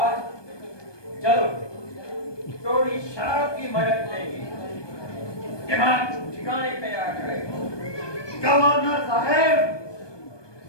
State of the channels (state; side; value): late; right; 1.2 ms